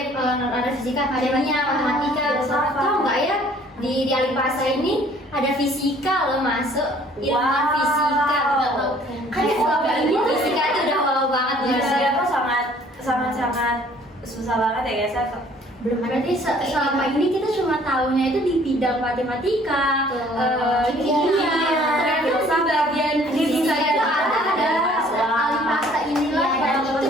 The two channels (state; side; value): normal; both; correlation 0.56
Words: fisika, kimia, matematika. filsafat. Tahu nggak ya di Alipasa ini ada fisika loh masuk ilmuwan Wow. fisika. Nggak tahu. Kan selama ini fisika itu udah wow banget Iya, ya. saya tuh sangat susah banget ya guys. Saya Belum ada Berarti selama ini kita cuma tahunya itu di bidang matematika, kimia, ternyata di bagian fisika itu ada Alipasa inilah dan yang itu